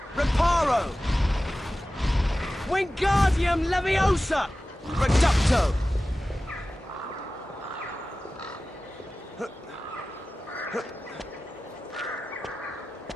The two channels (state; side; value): normal; both; correlation 0.96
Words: Reparo! Wingardium Leviosa! Reducto!